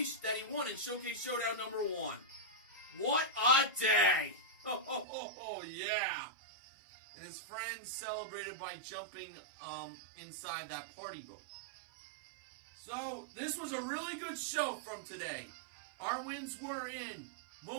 that he won in Showcase Showdown number 1. What a day! Oh, yeah! And his friends celebrated by jumping inside that party boat. So, this was a really good show from today. Our wins were in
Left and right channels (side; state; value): left; drops out; at 5.1 s